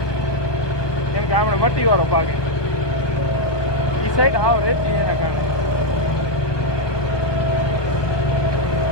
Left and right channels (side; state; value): right; late; 1.2 ms